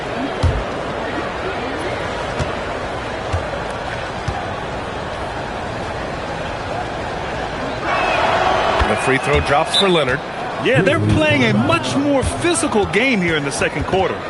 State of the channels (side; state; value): both; identical; correlation 1.00